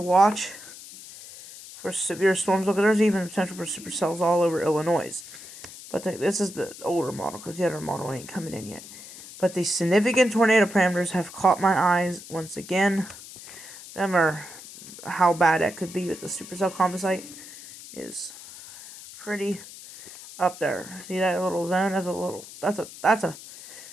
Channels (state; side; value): noise; left; hiss, 15 dB below the sound